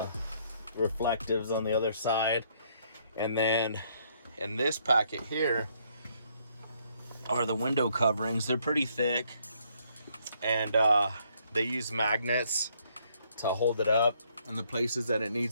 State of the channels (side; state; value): both; inverted; correlation -0.69